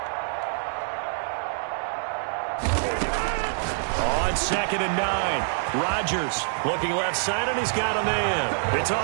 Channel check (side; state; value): left; silent; digital silence